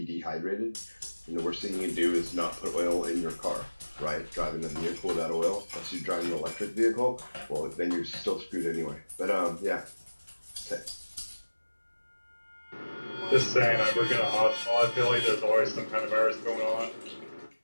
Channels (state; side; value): inverted; both; correlation -1.00